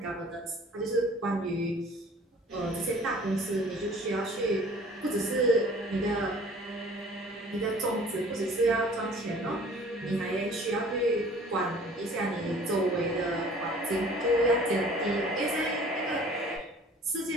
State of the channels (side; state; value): both; normal; correlation 0.50